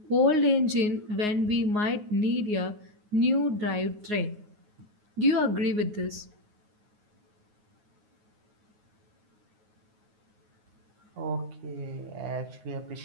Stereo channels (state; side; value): late; left; 9.5 ms